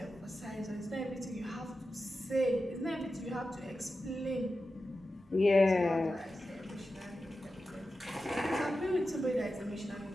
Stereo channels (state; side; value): normal; both; correlation 0.92